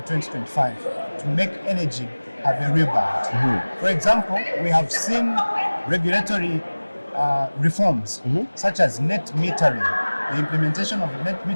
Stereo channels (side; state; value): both; inverted; correlation -1.00